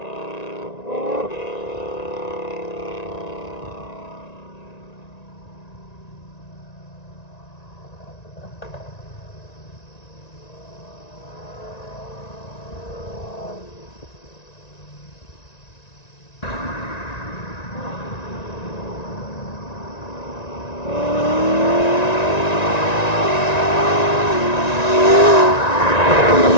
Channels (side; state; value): right; late; 1.9 ms